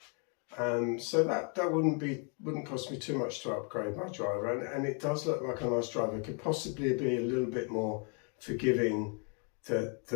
So that wouldn't cost me too much to upgrade my driver, and it does look like a nice driver. It could possibly be a little bit more forgiving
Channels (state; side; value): quieter; right; 38.9 dB